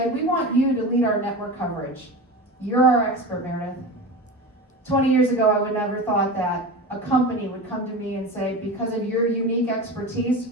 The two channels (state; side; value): normal; both; correlation 0.28